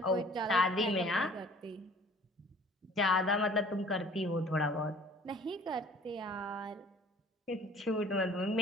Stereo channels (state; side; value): normal; both; correlation 0.51